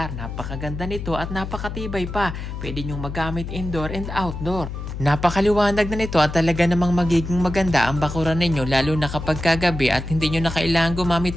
Napakaganda nito at napakatibay pa. Pwede nyong magamit indoor and outdoor. Napakaliwanag na nito at talaga namang magiging maganda ang bakuran ninyo lalo na kapag kagabi at hindi nyo na kailangan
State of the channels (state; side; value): noise; left; hum, 7 dB below the sound